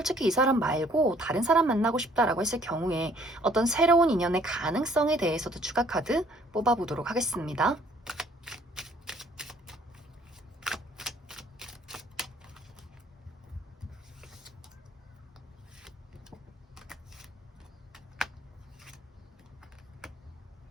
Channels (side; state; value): both; normal; correlation 0.60